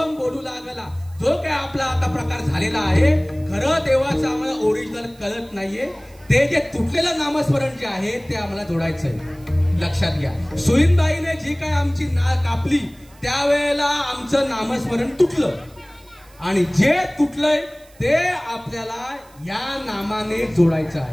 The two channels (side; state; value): right; noise; hiss, 28 dB below the sound